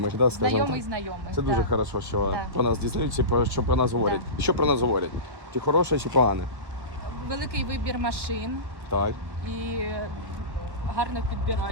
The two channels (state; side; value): late; left; 1.3 ms